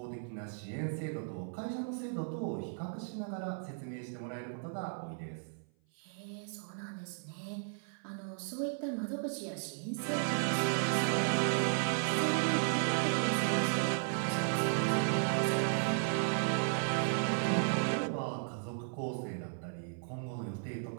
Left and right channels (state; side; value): silent; left; 54 dB below the other